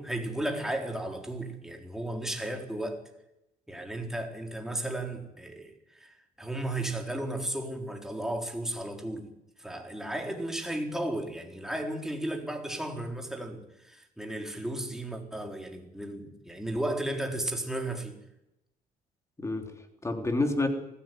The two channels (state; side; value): normal; both; correlation 0.76